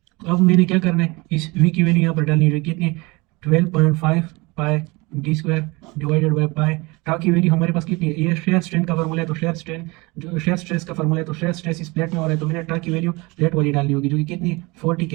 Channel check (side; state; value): left; quieter; 24.8 dB